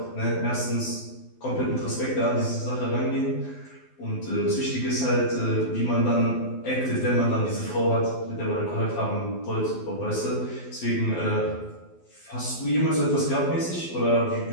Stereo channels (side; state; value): right; late; 12 ms